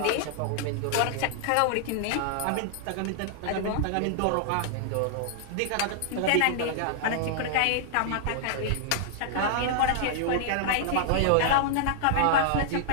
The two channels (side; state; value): both; different; correlation -0.01